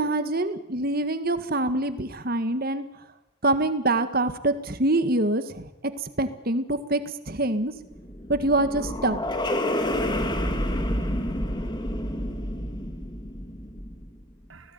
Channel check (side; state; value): both; normal; correlation 0.23